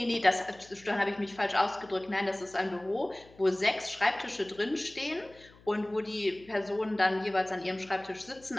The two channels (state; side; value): noise; left; hum, 25 dB below the sound